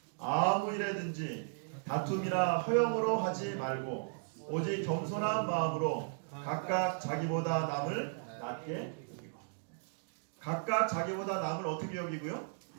아무 일에든지 다툼이나 허영으로 하지 말고 오직 겸손한 마음으로 각각 자기보다 남을 낮게 여기고, 각각 자기보다 남을 어떻게 여기고요?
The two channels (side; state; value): left; silent; digital silence